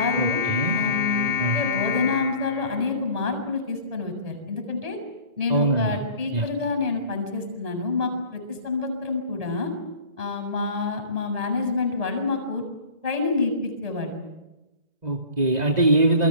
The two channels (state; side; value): late; left; 1.8 ms